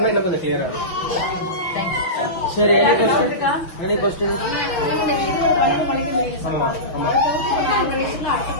இன்னும் கொஞ்சம் கிளியரா இருக்கும். சரி, எனி கொஸ்டின்? ஆமா ஆமா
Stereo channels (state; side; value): late; right; 6.0 ms